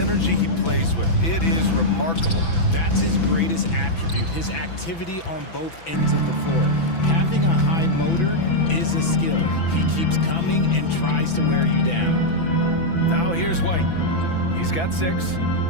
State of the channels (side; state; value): right; late; 6.0 ms